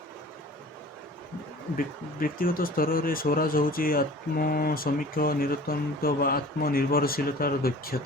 ବ୍ୟକ୍ତିଗତ ସ୍ତରରେ ସ୍ୱରାଜ ହେଉଛି ଆତ୍ମସମୀକ୍ଷା, ନିରନ୍ତର ବା ଆତ୍ମନିର୍ଭରଶୀଳତାର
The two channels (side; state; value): both; normal; correlation 0.44